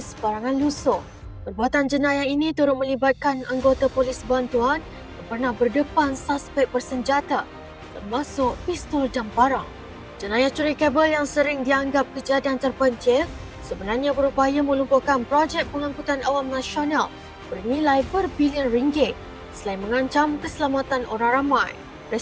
barangan lusuh. Perbuatan jenayah ini turut melibatkan anggota polis bantuan yang pernah berdepan suspek bersenjata termasuk pistol dan parang. Jenayah curi kabel yang sering dianggap kejadian terpencil sebenarnya berupaya melumpuhkan projek pengangkutan awam nasional bernilai berbilion ringgit selain mengancam keselamatan orang ramai.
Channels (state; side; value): identical; both; correlation 1.00